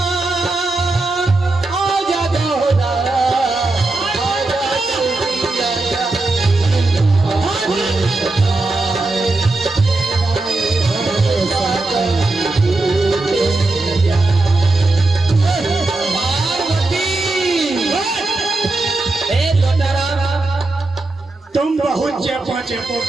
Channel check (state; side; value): quieter; left; 3.1 dB